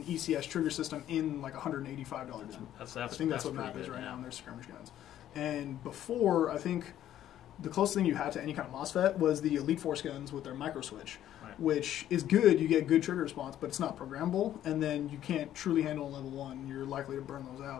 ECS trigger system in like $185 gun. I think that's what MAP is right now in their skirmish guns. And before, I think the closest thing you had to any kind of MOSFET was the Elite Force guns with their micro switch, which is good. You get good trigger response, but it's not programmable, and then you can't truly handle a level 1. You're likely to burn those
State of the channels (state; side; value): quieter; right; 11.9 dB